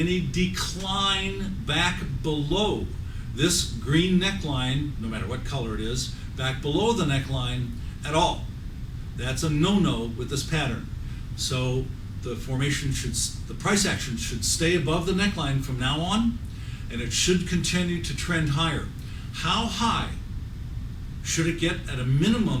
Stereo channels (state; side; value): identical; both; correlation 1.00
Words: decline back below this green neckline, no matter what color it is, back below the neckline at all. That's a no-no with this pattern. So the formation should, the price action should stay above the neckline from now on, and it should continue to trend higher. How high should it get? At a